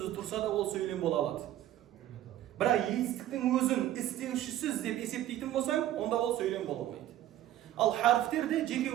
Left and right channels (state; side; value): quieter; left; 13.1 dB